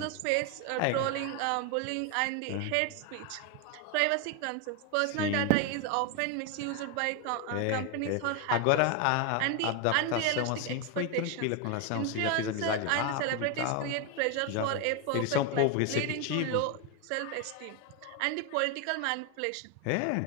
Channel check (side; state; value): both; different; correlation 0.01